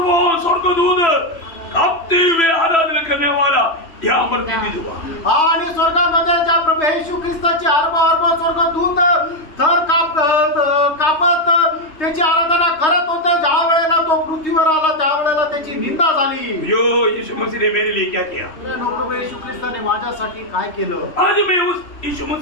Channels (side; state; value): right; late; 3.1 ms